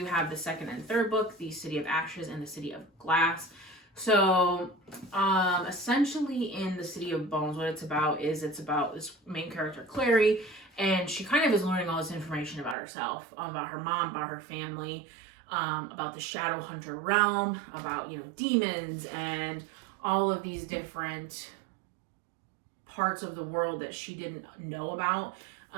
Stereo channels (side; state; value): left; drops out; at 12.8 s